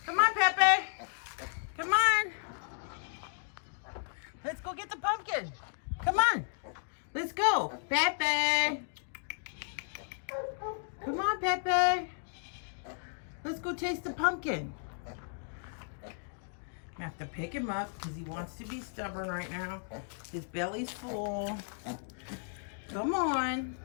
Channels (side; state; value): right; silent; digital silence